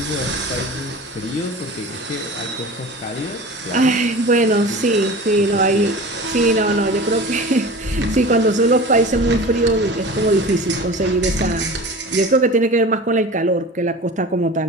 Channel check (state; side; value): normal; both; correlation 0.36